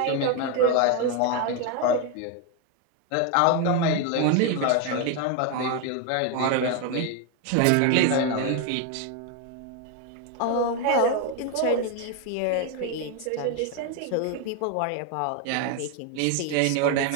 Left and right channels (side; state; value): both; different; correlation 0.01